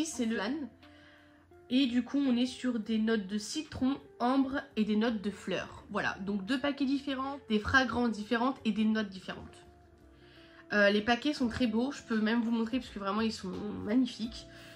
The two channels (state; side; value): identical; both; correlation 1.00